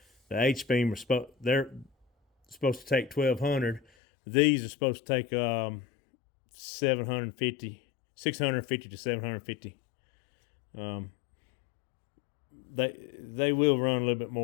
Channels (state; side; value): drops out; right; at 3.8 s